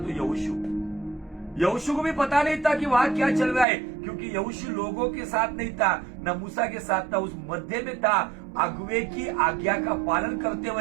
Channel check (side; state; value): left; drops out; at 3.7 s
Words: यहोशू को भी पता नहीं था कि वहां क्या चल रहा है, क्योंकि यहोशू लोगों के साथ नहीं था, न मूसा के साथ था, उस मध्य में था, अगुवे की आज्ञा का पालन करते